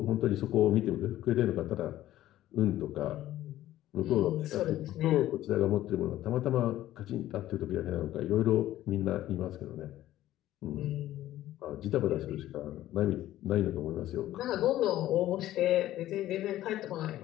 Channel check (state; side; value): quieter; right; 14.0 dB